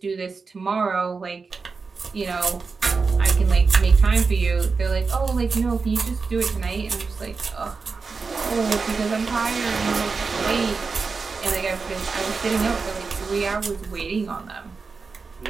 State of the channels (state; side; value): quieter; left; 4.6 dB